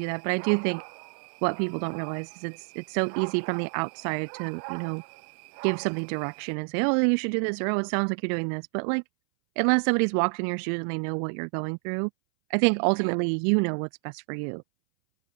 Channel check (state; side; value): silent; left; 60 dB below the other